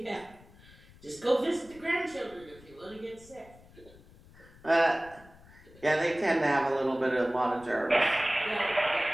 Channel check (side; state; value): left; noise; rumble, 23 dB below the sound